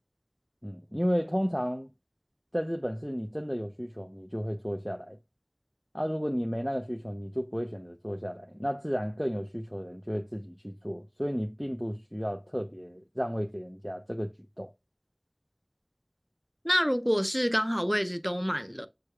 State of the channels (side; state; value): both; identical; correlation 1.00